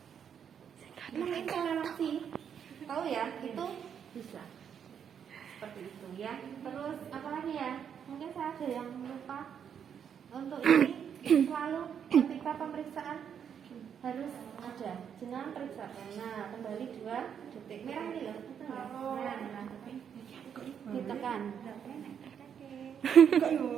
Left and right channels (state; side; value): quieter; left; 8.0 dB